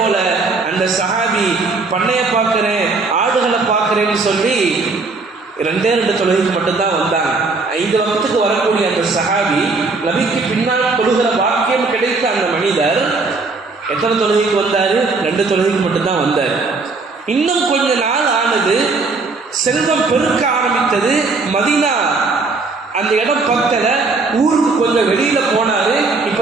அந்த சஹாபி பண்ணையை பார்க்கிறேன், ஆடுகளை பார்க்கிறேன்னு சொல்லி 2 தொழுகைக்கு மட்டும்தான் வந்தாங்க. 5 வக்துக்கு வரக்கூடிய அந்த சஹாபி, நபிக்கு பின்னால் தொழுகிற பாக்கியம் கிடைத்த அந்த மனிதர் எத்தனை தொழுகைக்கு வந்தாரு? 2 தொழுகைக்கு மட்டும்தான் வந்தார். இன்னும் கொஞ்ச நாள் ஆனது, செல்வம் பெருக்க ஆரம்பித்தது. மதீனா அந்த இடம் பக்கத்துல, ஊருக்கு கொஞ்சம் வெளியில போனாரு. இப்ப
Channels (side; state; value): left; quieter; 3.9 dB